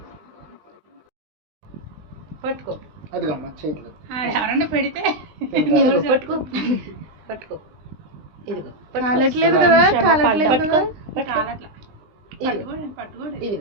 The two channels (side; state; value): left; late; 20 ms